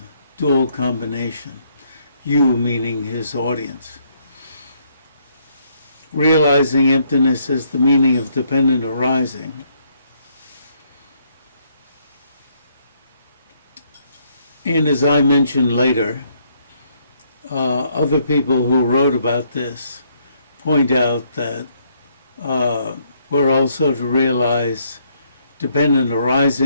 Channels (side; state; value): both; inverted; correlation -0.70